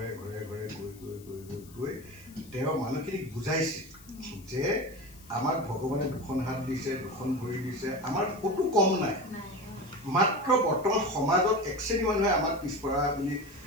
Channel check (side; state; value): left; noise; hiss, 23 dB below the sound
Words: ঘৰে ঘৰে গৈ তেওঁ মানুহখিনিক বুজাইছিল যে আমাক ভগৱানে দুখন হাত দিছে, দুখন ভৰি দিছে, আমাৰ ক'তো কম নাই, মাত্ৰ বৰ্তমান সমাজত এক শ্ৰেণী মানুহে আমাক পিছপৰা বুলি